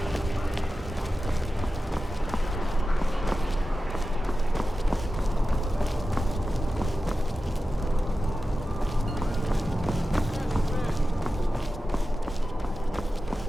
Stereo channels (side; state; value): both; normal; correlation 0.93